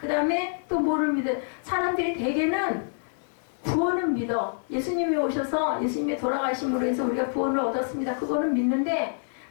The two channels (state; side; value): silent; right; 60 dB below the other